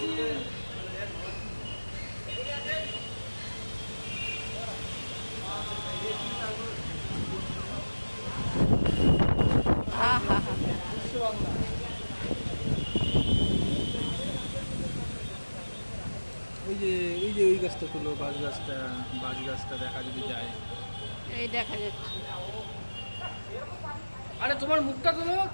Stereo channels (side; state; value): both; inverted; correlation -1.00